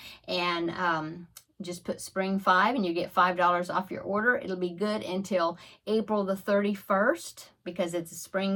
and Just put Spring 5 and you get $5 off your order. It'll be good until April the 31st because it's a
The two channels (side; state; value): both; identical; correlation 1.00